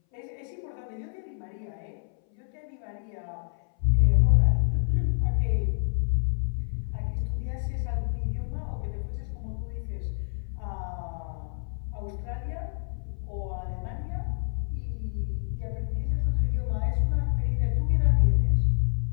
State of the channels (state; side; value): silent; right; 59 dB below the other